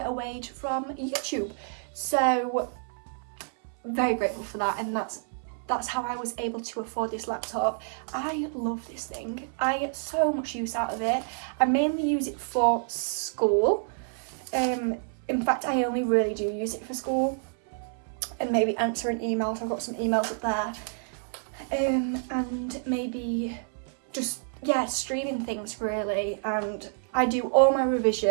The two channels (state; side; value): silent; left; 59 dB below the other